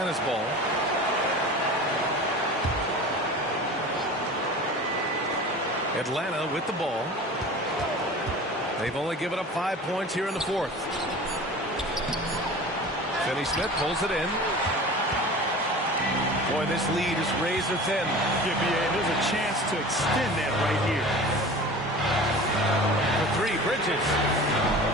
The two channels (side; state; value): both; normal; correlation 0.38